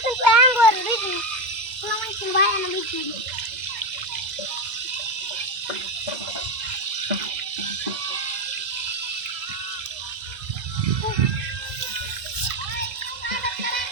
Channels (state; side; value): late; left; 2.0 ms